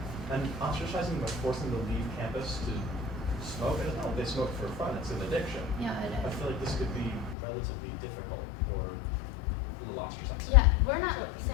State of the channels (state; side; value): drops out; right; at 7.4 s